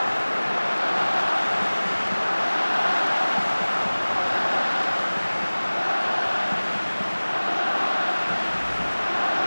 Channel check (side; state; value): both; inverted; correlation -1.00